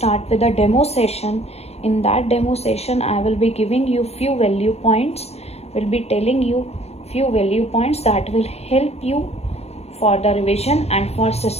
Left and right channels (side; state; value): right; late; 0.30 ms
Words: with a demo session. In that demo session, I will be giving you few value points. Will be telling you few value points that will help you for the revision and for